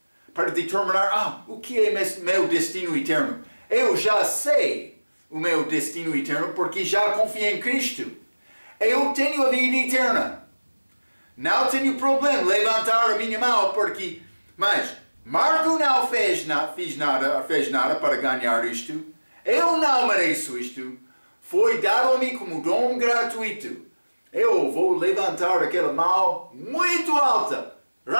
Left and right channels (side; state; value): both; inverted; correlation -1.00